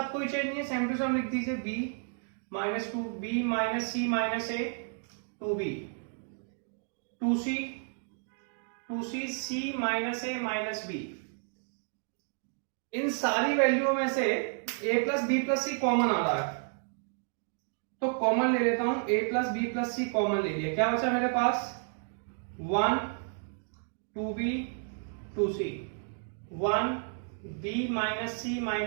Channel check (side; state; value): left; silent; 57 dB below the other